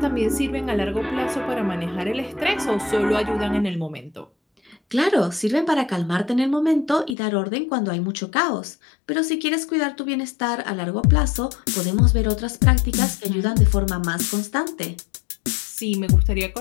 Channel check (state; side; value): drops out; right; at 7.2 s